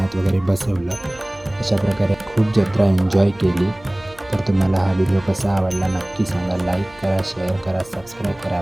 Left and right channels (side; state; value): right; noise; hum, 25 dB below the sound